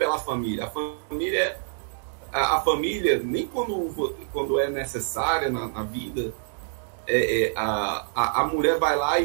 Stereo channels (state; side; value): silent; left; digital silence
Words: família. A família, nem quando é necessária na vida, a mulher vai lá e